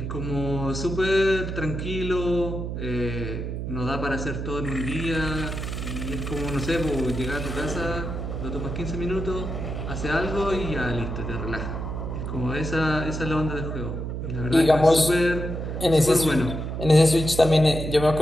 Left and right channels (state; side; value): noise; right; hum, 4 dB below the sound